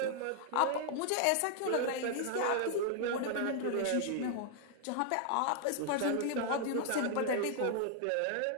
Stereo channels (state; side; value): different; both; correlation 0.00